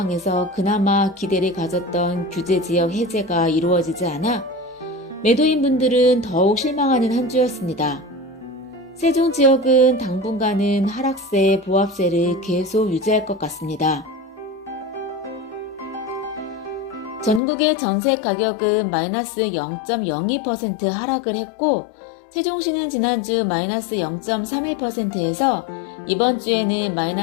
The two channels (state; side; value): drops out; right; at 17.4 s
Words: 그나마 기대를 가졌던 규제지역 해제가 이루어지지 않아 매도인분들은 더욱 실망하는 한 주였습니다. 세종 지역은 당분간은 하락세, 보합세를 계속 유지할 것 같습니다. 전국의 전세 가격은 마이너스 0.02% 하락을 했고 세종시는 지난주 마이너스 0.31%에서 이번 주에는